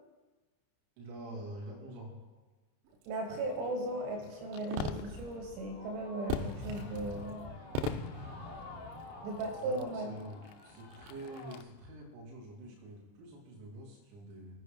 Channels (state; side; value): late; left; 30 ms